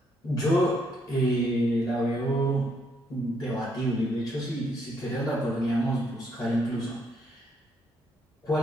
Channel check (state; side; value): normal; both; correlation 0.73